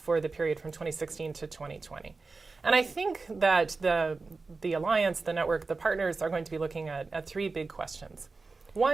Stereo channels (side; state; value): left; quieter; 4.0 dB